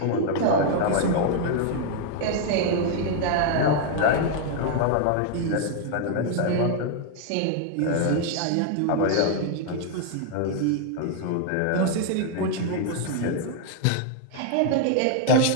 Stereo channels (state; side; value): different; both; correlation 0.00